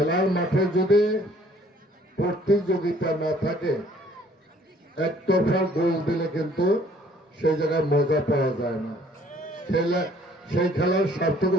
মাঠে যদি প্রতিযোগিতা না থাকে, একতরফা গোল দিলে কিন্তু সেই জায়গায় মজা পাওয়া যায় না, সেই খেলার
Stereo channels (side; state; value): both; normal; correlation 0.59